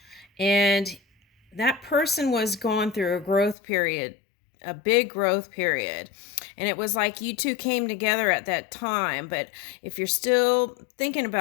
And that person was going through a growth period, a big growth period. And it was like you two came together at that time. But if you're still thinking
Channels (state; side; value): drops out; right; at 3.6 s